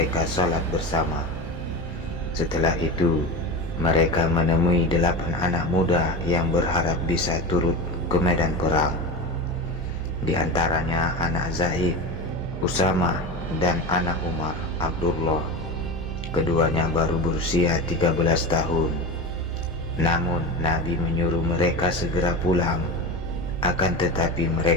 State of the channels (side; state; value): both; normal; correlation 0.26